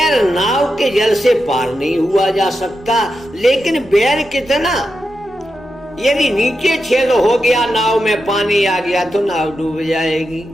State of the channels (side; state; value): both; normal; correlation 0.88